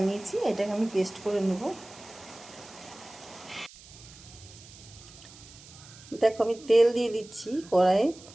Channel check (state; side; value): noise; right; hiss, 20 dB below the sound